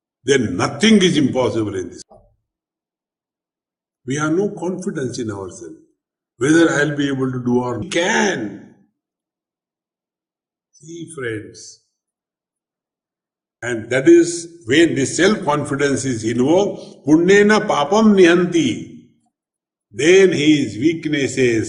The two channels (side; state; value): both; identical; correlation 1.00